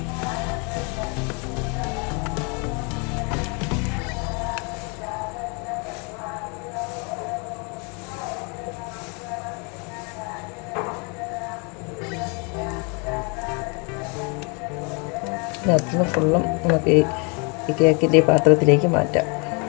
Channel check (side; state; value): right; quieter; 33.9 dB